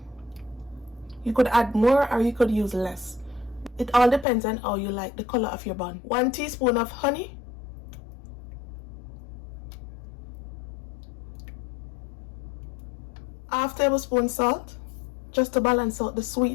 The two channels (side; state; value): right; drops out; at 4.2 s